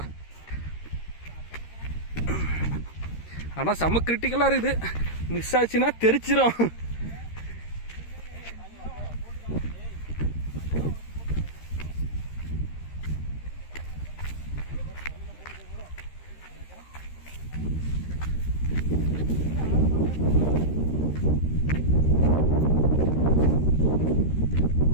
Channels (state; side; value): late; right; 13 ms